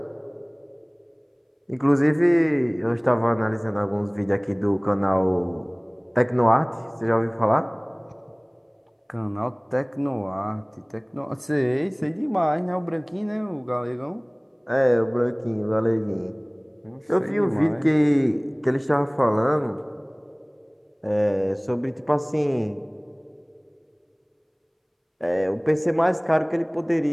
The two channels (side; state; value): both; identical; correlation 1.00